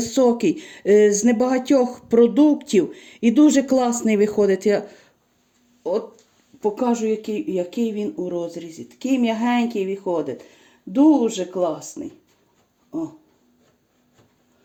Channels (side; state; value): both; identical; correlation 1.00